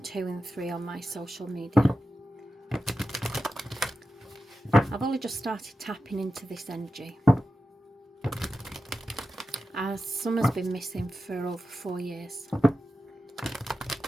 and 3 on my social media. I've only just started tapping into this energy, as Summer's been missing for over 4 years.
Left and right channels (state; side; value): normal; both; correlation 0.91